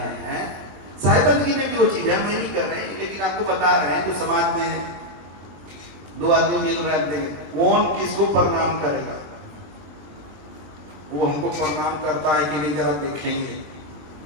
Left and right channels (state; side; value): late; left; 20 ms